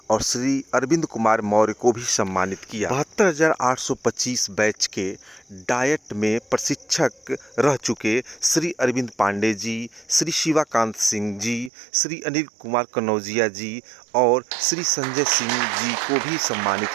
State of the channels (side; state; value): left; drops out; at 11.7 s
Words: और श्री अरविंद कुमार मौर्य को भी सम्मानित किया। 72,825 बैच के डायट में प्रशिक्षक रह चुके श्री अरविंद पांडे जी, श्री शिवाकांत सिंह जी, श्री अनिल कुमार कनौजिया जी और श्री संजय सिंह जी को भी सम्मानित